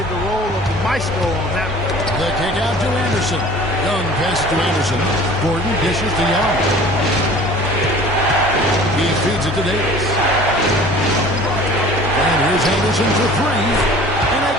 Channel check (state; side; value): normal; both; correlation 0.46